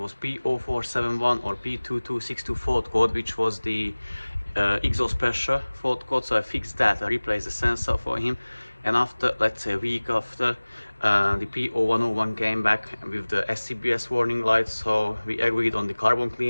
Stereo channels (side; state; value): both; inverted; correlation -1.00